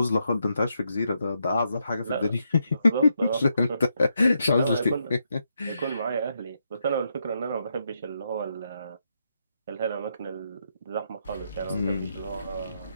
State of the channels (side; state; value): both; inverted; correlation -0.80